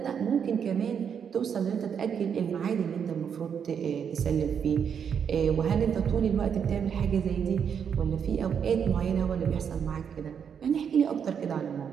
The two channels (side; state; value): left; quieter; 7.5 dB